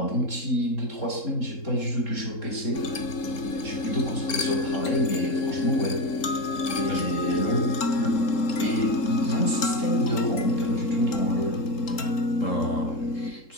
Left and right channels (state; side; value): late; right; 3.7 ms